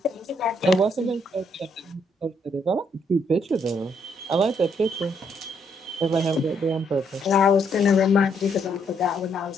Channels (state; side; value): normal; both; correlation 0.72